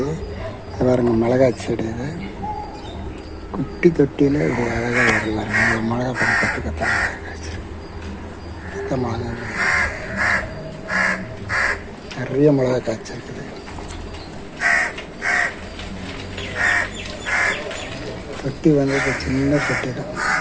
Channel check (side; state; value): both; identical; correlation 1.00